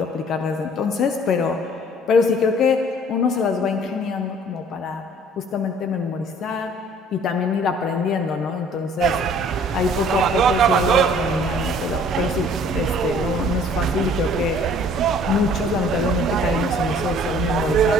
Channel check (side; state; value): both; normal; correlation 0.54